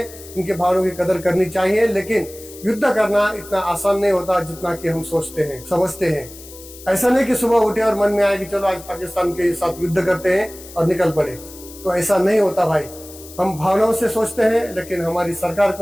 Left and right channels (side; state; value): left; noise; hiss, 17 dB below the sound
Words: उनकी भावनाओं की कदर करनी चाहिए। लेकिन युद्ध करना इतना आसान नहीं होता जितना कि हम सोचते हैं, समझते हैं। ऐसा नहीं कि सुबह उठे और मन में आए कि चलो आज पाकिस्तान के साथ युद्ध करते हैं और निकल पड़े, तो ऐसा नहीं होता भाई। हम भावनाओं से सोचते हैं, लेकिन हमारी सरकार